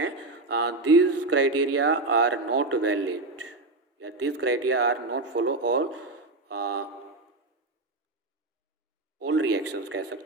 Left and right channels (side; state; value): left; quieter; 3.1 dB